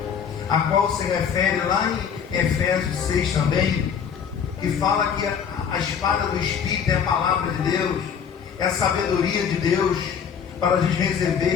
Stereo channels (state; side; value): quieter; right; 7.3 dB